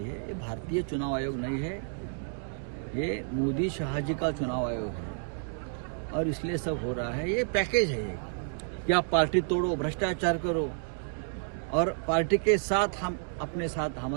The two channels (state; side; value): silent; left; digital silence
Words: है। ये भारतीय चुनाव आयोग नहीं है, ये मोदी शाह जी का चुनाव आयोग है और इसलिए सब हो रहा है। ये पैकेज है कि आप पार्टी तोड़ो, भ्रष्टाचार करो और पार्टी के साथ हम अपने साथ